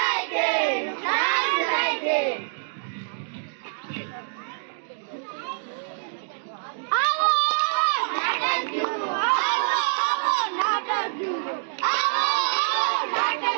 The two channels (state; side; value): silent; left; digital silence